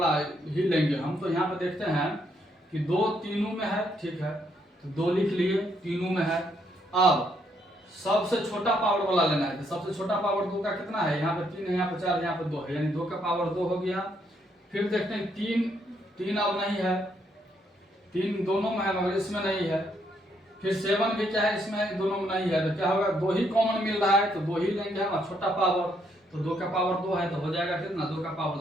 ही लेंगे हम। तो यहाँ पे देखते हैं कि 2 तीनों में है, ठीक है, तो 2 लिख लिए, तीनों में है। अब सबसे छोटा पावर वाला लेना है, तो सबसे छोटा पावर 2 का कितना है, यहाँ पे 3 है, यहाँ पे 4 है, यहाँ पे 2 है, यानी 2 का पावर 2 हो गया। फिर देखते हैं 3 अब नहीं है, 3 दोनों में है मगर इसमें नहीं है। फिर 7 भी क्या है, इसमें दोनों में नहीं है, तो क्या होगा, 2 ही कॉमन मिल रहा है, तो 2 ही लेंगे हम, छोटा पावर। तो 2 का पावर 2 है, तो हो जाएगा कितना, 2 का पावर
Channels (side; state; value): both; normal; correlation 0.73